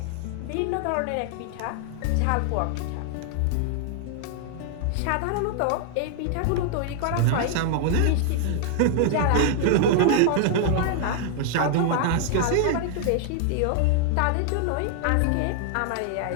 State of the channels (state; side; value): different; both; correlation 0.00